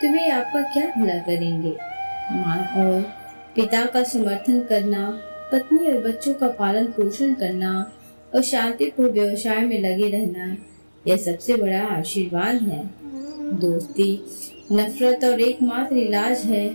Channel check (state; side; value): inverted; both; correlation -1.00